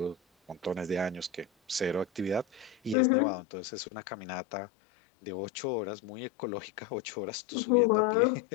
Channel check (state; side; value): drops out; right; at 3.0 s